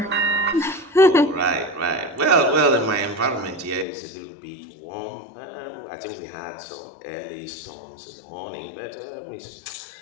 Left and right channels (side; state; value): right; drops out; at 3.9 s